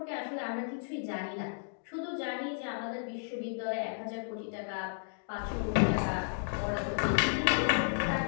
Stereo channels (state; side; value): silent; right; digital silence